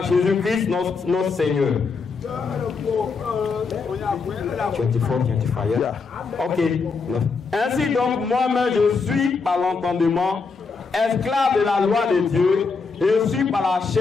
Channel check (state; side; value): quieter; right; 4.8 dB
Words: Jésus-Christ notre Seigneur. 24, 25. Yeah. Ok. Ainsi donc, moi-même, je suis par l'entendement esclave de la loi de Dieu, et je suis par la